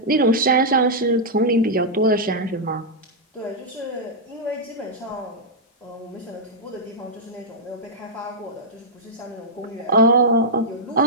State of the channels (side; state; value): both; normal; correlation -0.06